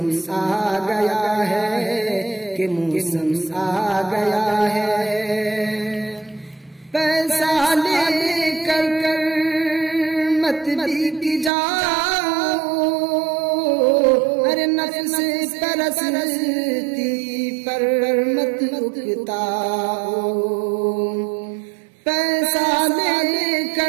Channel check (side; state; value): left; drops out; at 11.5 s